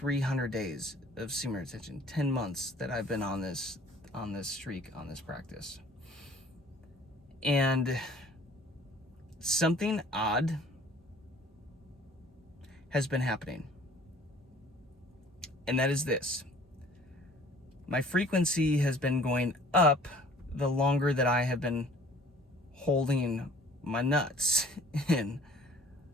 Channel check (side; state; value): both; normal; correlation 0.52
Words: days of semen retention, 10 months that I've been on this streak, on this practice. And something odd has been happening. And that is this. My frequency has been going up the longer that I have been holding my nuts in